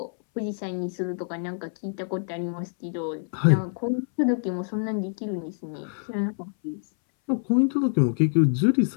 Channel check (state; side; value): silent; right; 61 dB below the other